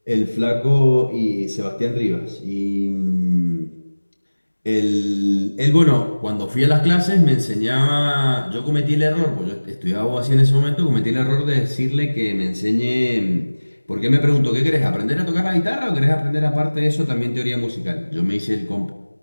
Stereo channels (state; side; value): inverted; both; correlation -1.00